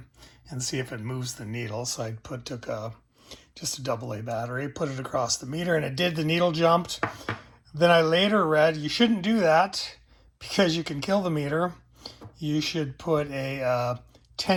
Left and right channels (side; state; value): both; identical; correlation 1.00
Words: and see if it moves the needle. So I took just a AA battery, put it across the meter, and it did. The needle jumped. Then I later read you shouldn't do that because you can kill the meter. You should put a